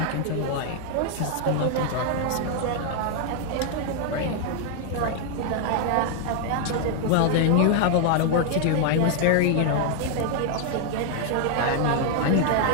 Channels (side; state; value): both; different; correlation 0.00